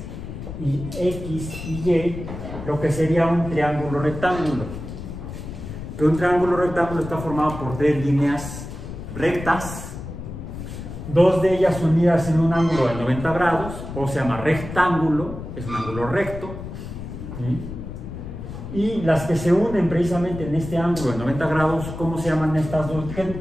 y Y, lo que sería un triángulo rectángulo. Que un triángulo rectángulo está formado por tres líneas rectas, dos de ellas unidas en un ángulo de 90 grados, o se llama rectángulo, es un ángulo recto, ¿sí? Y las que se unen precisamente en este ángulo de 90 grados, ¿cómo se llaman estas dos?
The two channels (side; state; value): left; noise; rumble, 9 dB below the sound